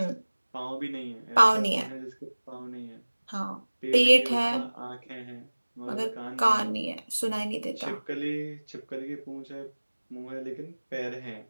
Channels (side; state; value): both; inverted; correlation -1.00